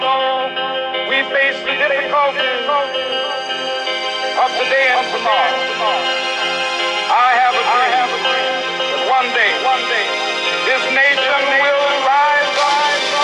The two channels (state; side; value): identical; both; correlation 1.00